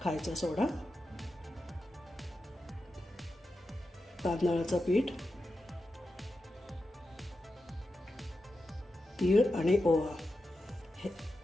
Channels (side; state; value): both; normal; correlation 0.90